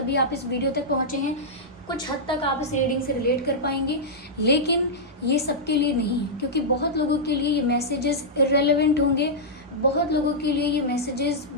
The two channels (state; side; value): normal; both; correlation -0.09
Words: आप इस वीडियो तक पहुँचे हैं। कुछ हद तक आप इस रीडिंग से रिलेट कर पाएंगे, लेकिन ये सबके लिए नहीं है, क्योंकि बहुत लोगों के लिए ये मैसेजेस इररेलेवेंट होंगे, बहुत लोगों के लिए ये मैसेजेस